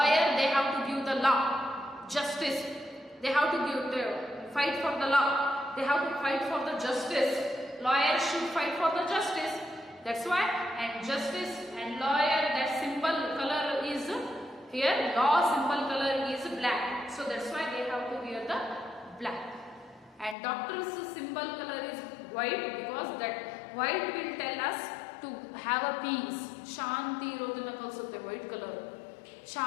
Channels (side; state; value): right; drops out; at 20.4 s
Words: they have to give the law, justice. They have to fight for the law. They have to fight for the justice. Lawyer should fight for the justice. That's why, and justice and lawyer, that symbol color is here, law symbol color is black. So that's why they have to wear the black. And doctor's symbol color is white, because that white will tell us to have a peace. ಶಾಂತಿ ಇರೋದನ್ನ ಕಲಿಸುತ್ತೆ white colour.